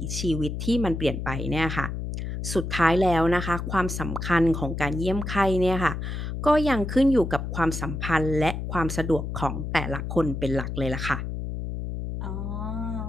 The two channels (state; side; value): noise; left; hum, 4 dB below the sound